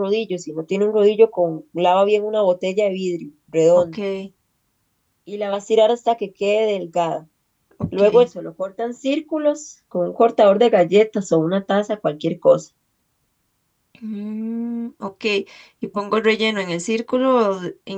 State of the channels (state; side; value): identical; both; correlation 1.00